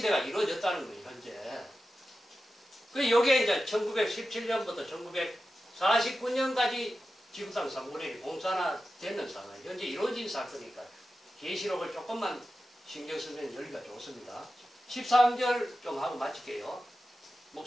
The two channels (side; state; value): both; normal; correlation 0.92